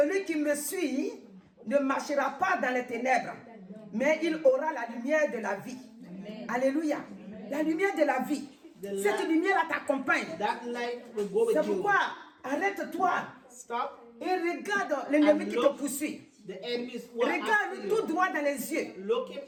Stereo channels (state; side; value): identical; both; correlation 1.00